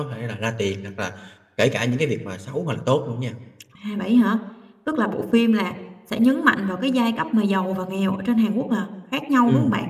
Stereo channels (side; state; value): both; identical; correlation 1.00